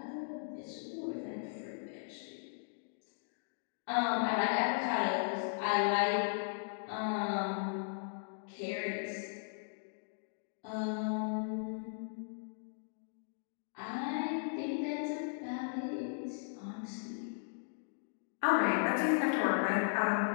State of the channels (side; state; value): right; silent; digital silence